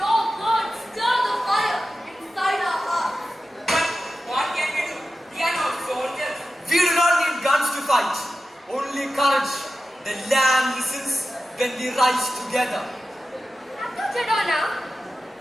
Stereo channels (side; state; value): both; normal; correlation 0.93